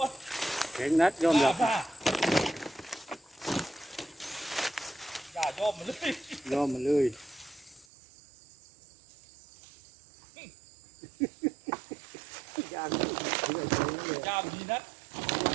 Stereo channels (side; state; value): left; drops out; at 7.9 s